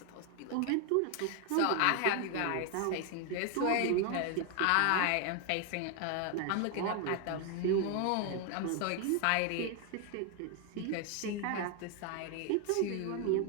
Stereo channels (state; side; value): different; both; correlation 0.01